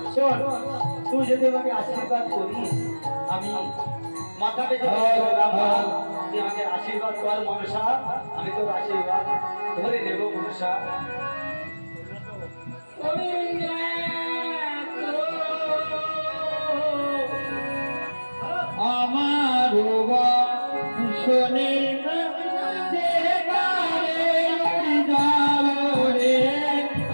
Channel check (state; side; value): inverted; both; correlation -1.00